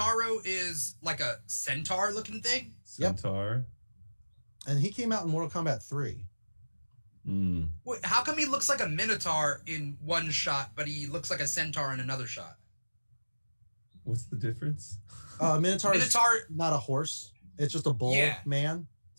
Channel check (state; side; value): inverted; both; correlation -1.00